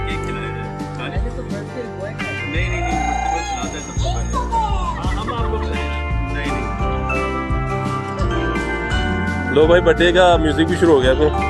जाए। पहले तो birthday boy का है। नहीं नहीं नहीं, बर्थडे बॉय खिलाता है सबको पहले। हाँ हम आपको खिलाएं। नहीं नहीं लो भाई बर्थडे का म्यूजिक भी शुरू हो गया अपने।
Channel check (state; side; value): identical; both; correlation 1.00